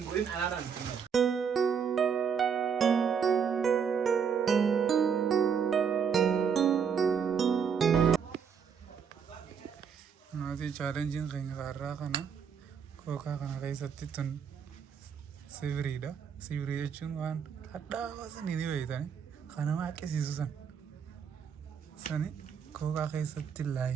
أنا ران نادي challenging كين غارة كنا كوكا كنا كيساتي تون sibrii da sibrii jechuun waan hadhaawa sanii ni beektani kana maa akkasiisu sani kookaa keessatti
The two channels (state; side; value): quieter; left; 6.9 dB